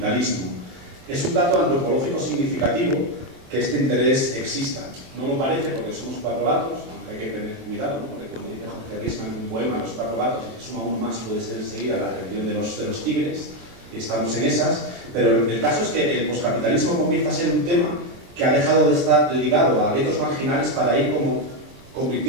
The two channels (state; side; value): late; left; 23 ms